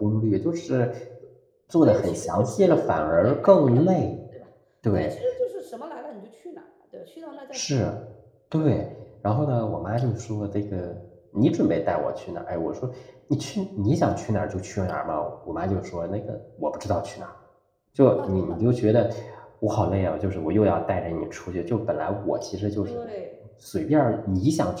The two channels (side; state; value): both; identical; correlation 1.00